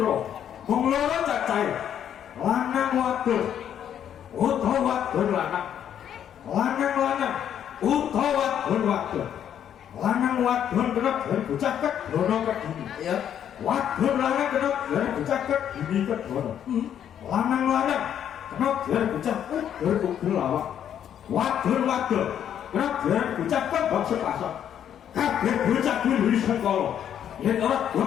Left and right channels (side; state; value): right; quieter; 9.6 dB